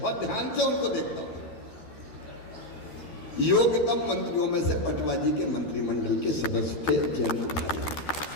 बहुत ध्यान से उनको देखता था। योग्यतम मंत्रियों में से पटवा जी के मंत्रिमंडल के सदस्य थे जयंत भाई।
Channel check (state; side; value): late; right; 12 ms